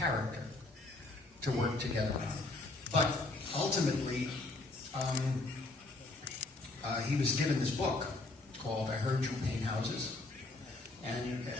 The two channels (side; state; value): right; quieter; 3.0 dB